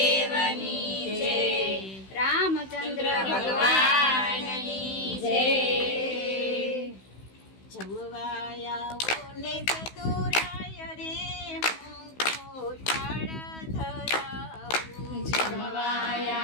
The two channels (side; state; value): right; late; 16 ms